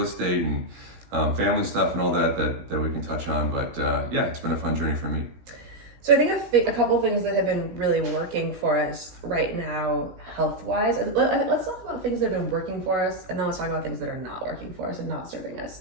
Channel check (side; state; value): left; late; 17 ms